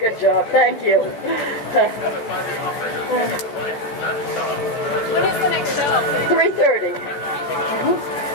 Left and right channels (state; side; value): late; right; 14 ms